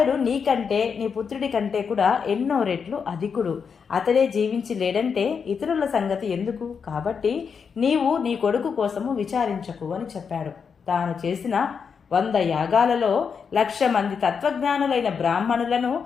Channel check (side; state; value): right; quieter; 6.2 dB